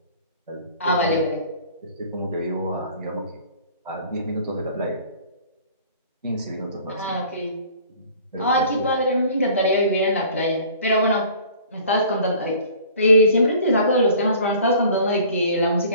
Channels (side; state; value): both; inverted; correlation -0.49